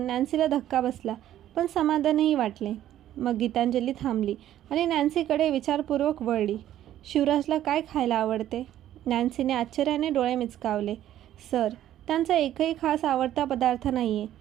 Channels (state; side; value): quieter; left; 12.2 dB